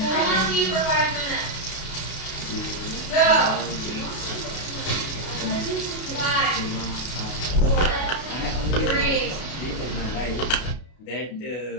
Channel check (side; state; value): right; late; 32 ms